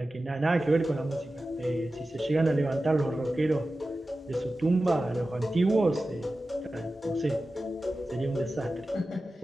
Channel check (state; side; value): normal; both; correlation 0.94